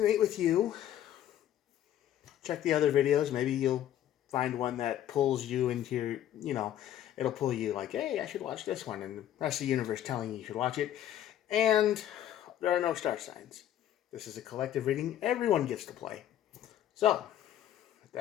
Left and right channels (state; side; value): quieter; right; 11.6 dB